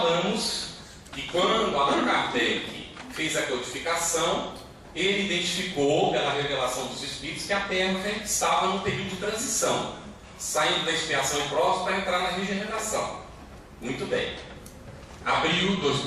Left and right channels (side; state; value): both; identical; correlation 1.00